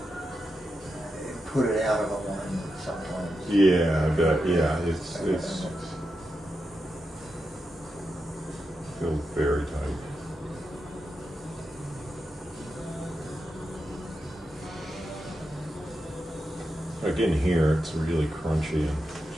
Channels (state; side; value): normal; both; correlation 0.87